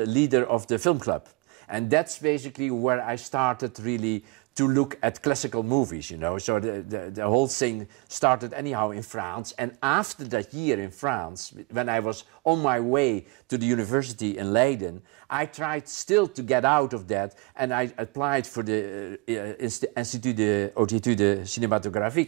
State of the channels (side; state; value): left; quieter; 25.6 dB